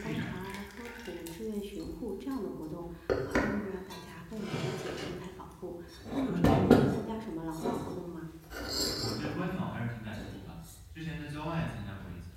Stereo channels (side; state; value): both; identical; correlation 1.00